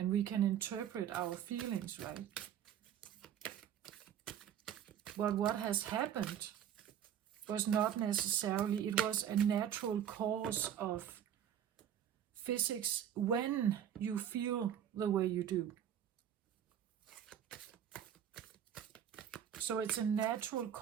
we can interpret our feelings, right? But what has happened was not necessarily, it was a natural cause of physics when you feel the way you do. So it's a natural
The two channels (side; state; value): left; quieter; 9.6 dB